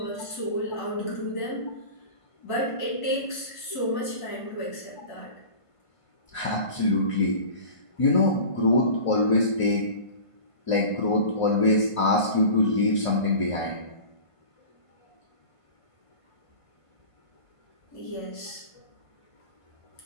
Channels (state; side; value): late; right; 1.5 ms